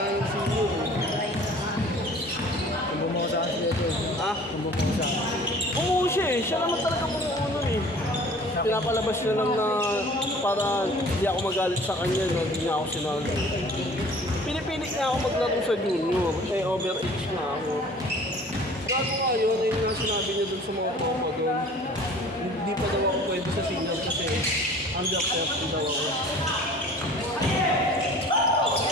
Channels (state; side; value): normal; both; correlation 0.48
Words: yung senior. Kung bumuha saan sila ito. Kung bumuha saan. Oo siya eh. Siya naman talaga bumuha eh. Pinapalabas niya lang na para hindi ako magalit sa kanya, no? Hindi niya ako sinali. Pinipilit niya ako maglaro sa junior. Eh, overage na ako. Gago nga yun, ayun nga sinabi niya dun sa mga tropa dun. Hindi pa daw ako pwede sa senior kasi under 30 daw ako.